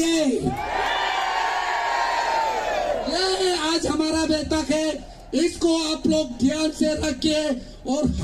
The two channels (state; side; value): identical; both; correlation 1.00